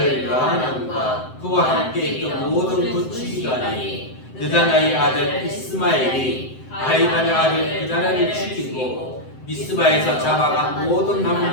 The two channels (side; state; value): right; late; 7.8 ms